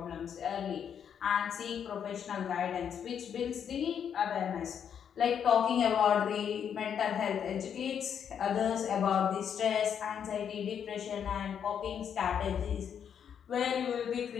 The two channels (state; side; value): quieter; right; 8.2 dB